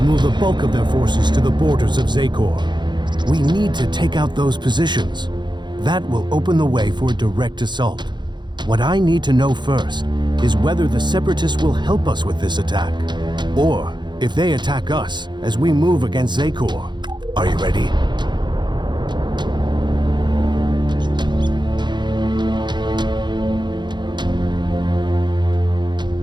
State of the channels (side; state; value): left; late; 0.22 ms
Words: the bulk of their forces to the borders of Zakor. We need to take out those positions. That will open the way for a direct assault. What I need to know first is whether the Separatists will help us with this attack, or if they attack us as we move against Zakor. Are you ready?